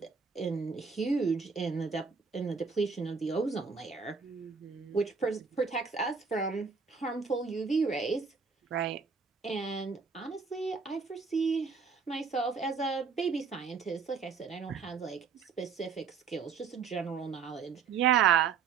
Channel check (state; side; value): quieter; left; 5.6 dB